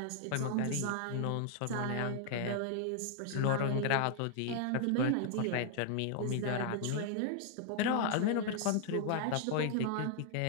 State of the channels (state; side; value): different; both; correlation -0.01